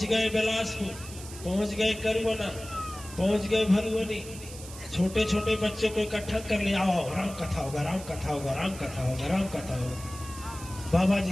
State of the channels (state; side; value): noise; right; hiss, 15 dB below the sound